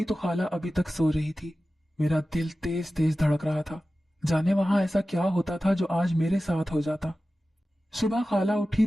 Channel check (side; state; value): both; normal; correlation 0.95